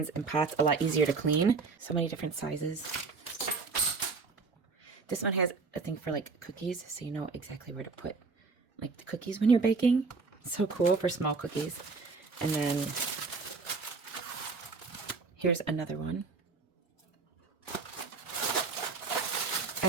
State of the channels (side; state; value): left; quieter; 4.4 dB